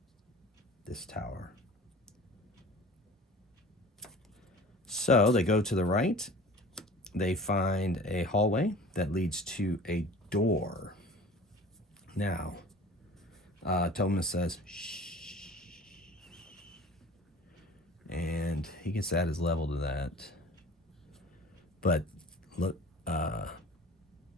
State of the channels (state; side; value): normal; both; correlation 0.43